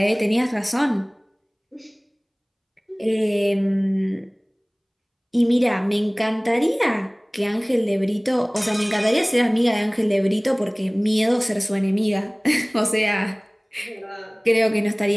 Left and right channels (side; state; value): both; identical; correlation 1.00